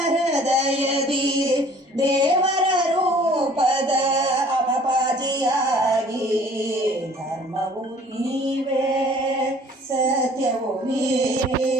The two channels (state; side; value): normal; both; correlation 0.53